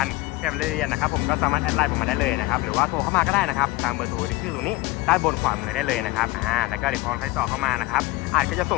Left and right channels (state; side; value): quieter; right; 19.8 dB